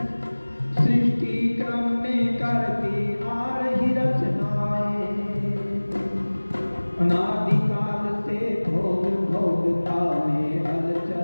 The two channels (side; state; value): both; inverted; correlation -1.00